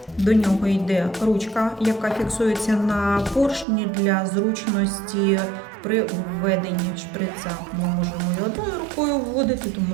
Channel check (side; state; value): left; drops out; at 3.7 s